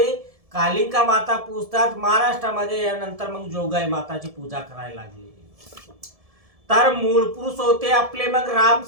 कालिंका माता पूजतात, महाराष्ट्रामध्ये यानंतर मग जोगाई माताची पूजा करायला लागली. तर मूळ पुरुष होते आपले मग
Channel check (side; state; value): left; late; 1.7 ms